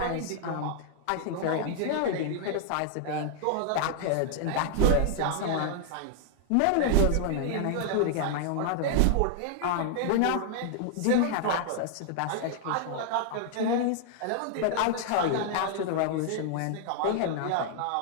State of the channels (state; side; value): different; both; correlation -0.01